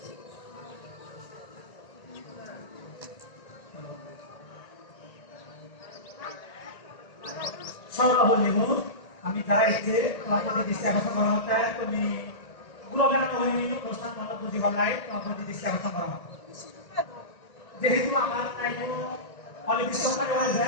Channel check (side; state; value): right; late; 1.8 ms